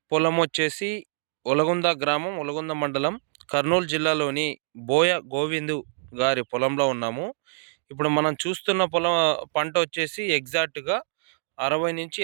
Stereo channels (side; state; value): left; silent; digital silence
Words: పొలం వచ్చేసి ఒలగొంద గ్రామం, ఒలగొంద మండలం, కర్నూలు జిల్లాలోని బోయ గోవిందు గారి పొలంలో ఉన్నాము. ఇప్పుడు మనం చూస్తున్న పంట వచ్చేసి ఎగ్జాక్ట్‌గా